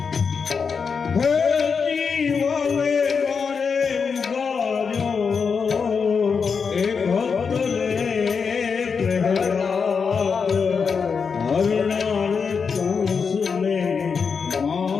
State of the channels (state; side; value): quieter; right; 5.7 dB